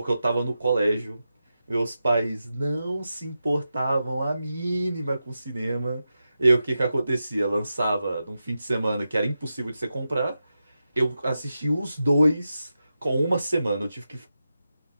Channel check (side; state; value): both; inverted; correlation -0.90